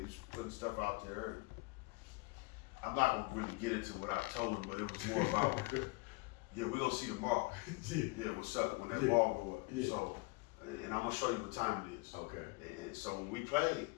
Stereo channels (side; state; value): right; quieter; 26.0 dB